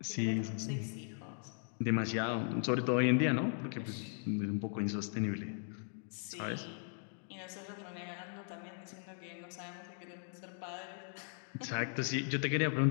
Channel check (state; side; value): silent; right; 52 dB below the other